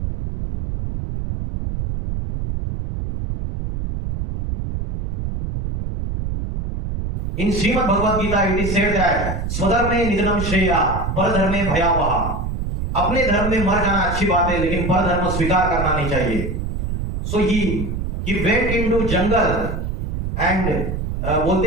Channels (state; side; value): noise; right; rumble, 3 dB below the sound